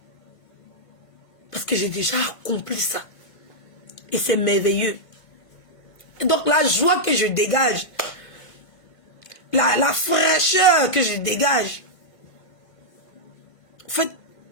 Parce que j'ai déjà accompli ça. Et c'est merveilleux. Et donc la joie que je dégage, la fraîcheur que je dégage, en fait,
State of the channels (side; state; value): right; late; 1.5 ms